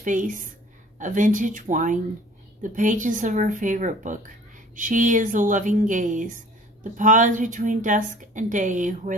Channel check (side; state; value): both; normal; correlation 0.50